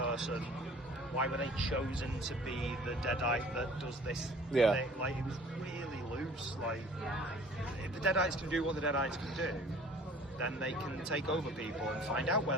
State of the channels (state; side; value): normal; both; correlation 0.50